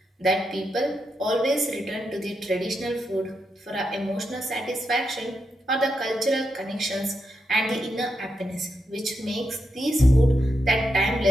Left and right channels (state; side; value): normal; both; correlation 0.84